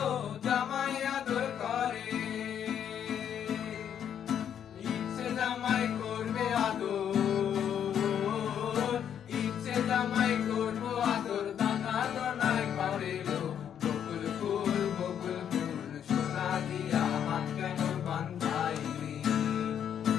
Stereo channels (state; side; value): quieter; right; 9.0 dB